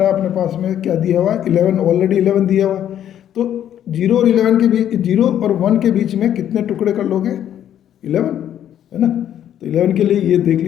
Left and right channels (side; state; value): right; quieter; 10.5 dB